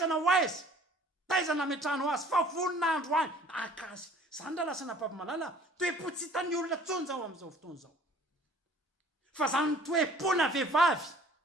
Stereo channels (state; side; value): normal; both; correlation 0.53